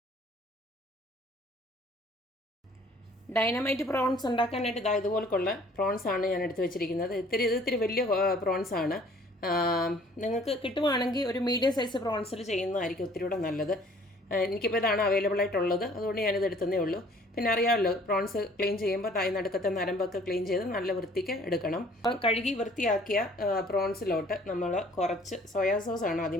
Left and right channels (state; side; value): normal; both; correlation 0.55